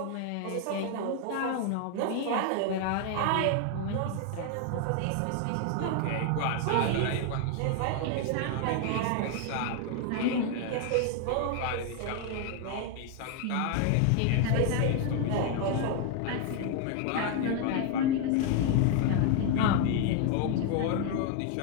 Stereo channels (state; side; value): different; both; correlation 0.00